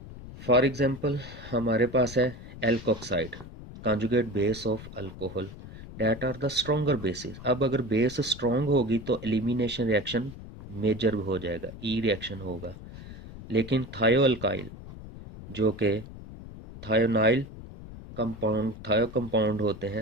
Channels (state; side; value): noise; left; rumble, 14 dB below the sound